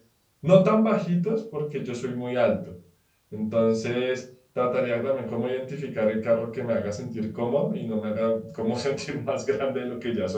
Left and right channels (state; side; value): identical; both; correlation 1.00